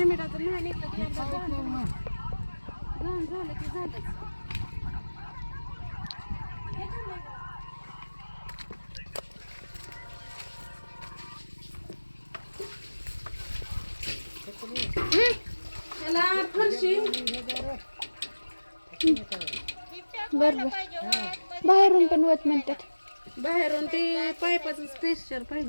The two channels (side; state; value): both; inverted; correlation -1.00